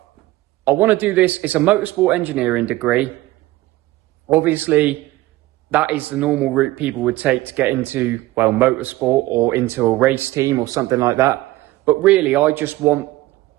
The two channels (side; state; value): left; quieter; 17.7 dB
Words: I want to do this. It's a motorsport engineering degree. Obviously, that is the normal route people would take to get into, well, motorsport or into a race team or something like that. But really, I